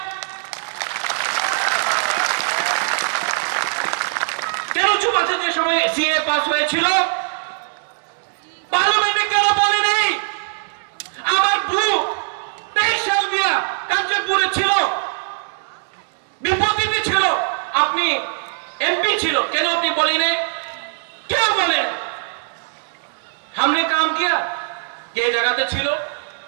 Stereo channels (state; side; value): silent; left; digital silence